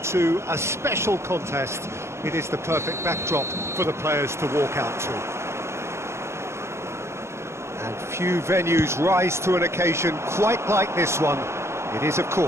to a special contest. It is the perfect backdrop for the players to walk out to. And few venues rise to an occasion quite like this one. It is, of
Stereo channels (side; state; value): left; late; 0.13 ms